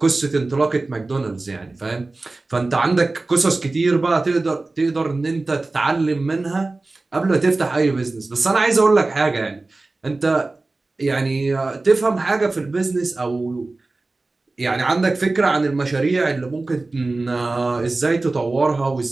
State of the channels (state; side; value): quieter; left; 3.3 dB